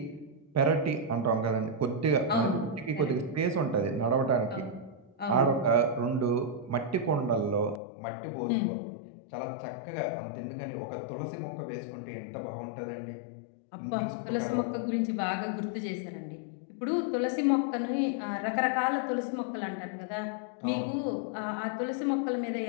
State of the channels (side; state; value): right; drops out; at 7.8 s